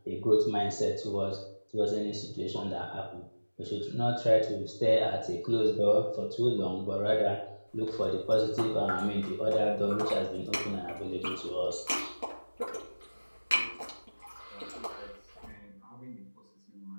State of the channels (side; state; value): both; inverted; correlation -1.00